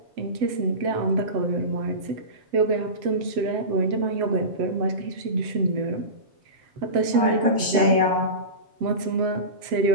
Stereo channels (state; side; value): late; left; 7.4 ms